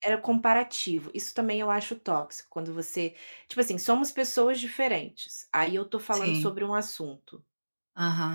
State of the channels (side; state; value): both; inverted; correlation -1.00